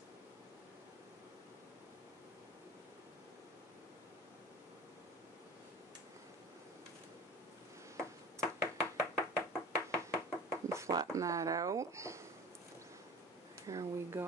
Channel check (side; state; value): both; normal; correlation 0.39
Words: And flatten that out. There we